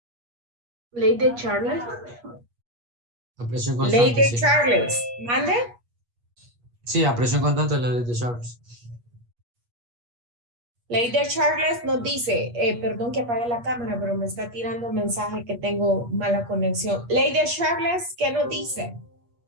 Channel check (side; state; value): left; late; 8.4 ms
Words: Ley de Charles. La presión Ley constante, de sí. Charles. ¿Mande? Sí, a presión constante es la ley de Charles. Ley de Charles nos dice, perdón que apague la cámara, pero me está tirando un mensaje que tengo mala conexión. Ley de Charles, ¿qué nos dice?